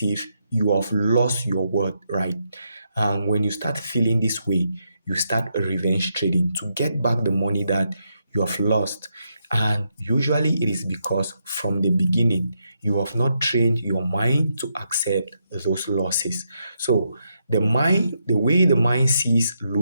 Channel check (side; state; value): both; inverted; correlation -0.80